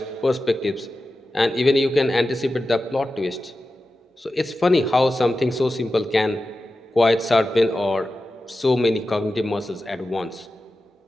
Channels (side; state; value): both; normal; correlation 0.93